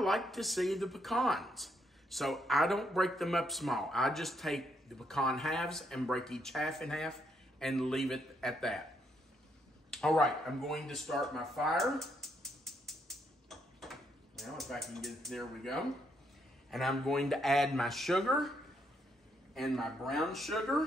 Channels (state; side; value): normal; both; correlation 0.75